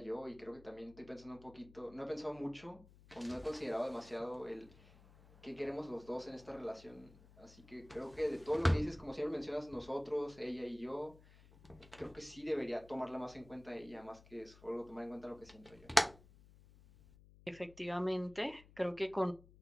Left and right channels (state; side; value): noise; left; hum, 22 dB below the sound